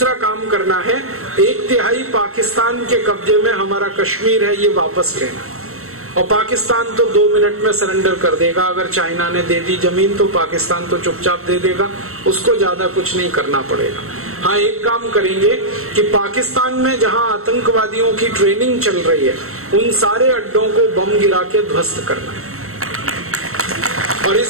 काम करना है, 1/3 पाकिस्तान के कब्जे में हमारा कश्मीर है, ये वापस लेना। और पाकिस्तान तो 2 मिनट में सरेंडर कर देगा। अगर चाइना ने दे दी जमीन तो पाकिस्तान तो चुपचाप दे देगा, उसको ज्यादा कुछ नहीं करना पड़ेगा। हाँ, एक काम करेंगे कि पाकिस्तान में जहां आतंकवादियों की ट्रेनिंग चल रही है, उन सारे अड्डों को बम गिरा के ध्वस्त करना है। और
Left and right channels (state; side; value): late; left; 0.63 ms